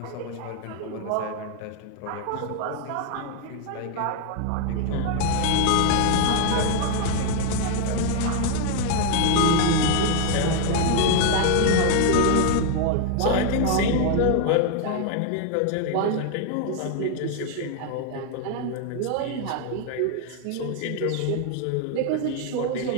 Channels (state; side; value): different; both; correlation 0.00